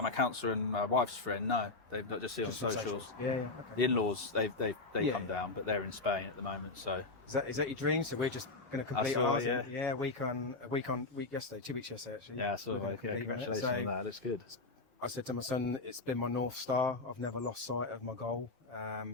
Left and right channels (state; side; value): quieter; right; 3.4 dB